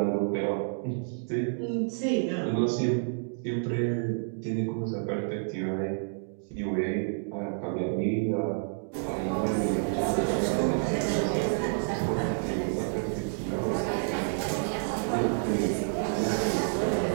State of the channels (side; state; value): left; silent; digital silence